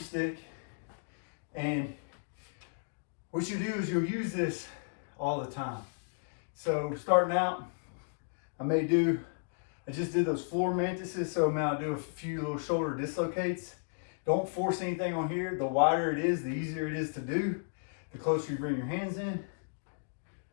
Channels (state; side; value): silent; right; digital silence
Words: and what you do is you'll use this all the time. So starting out, I just did those floor mantises, so now I'll do a few little shoulder dislocates. Don't force anything on here. The wider it is, the easier it is to do. The closer you bring your hands in,